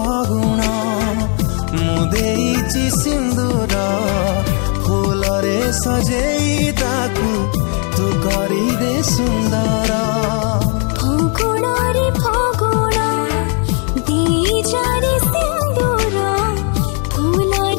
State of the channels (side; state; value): right; quieter; 39.9 dB